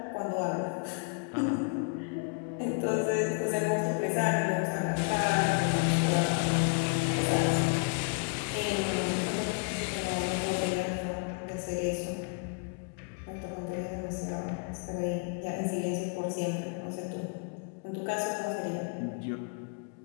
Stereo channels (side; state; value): right; quieter; 37.0 dB